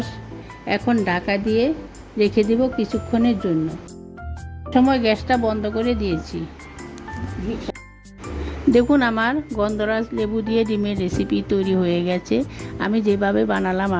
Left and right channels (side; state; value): both; identical; correlation 1.00